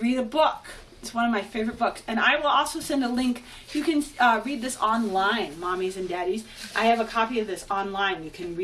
a book. It's one of my favorite books. And I will also send a link. You can read this online, mommies and daddies. I have a copy of this online. You can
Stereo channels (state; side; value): identical; both; correlation 1.00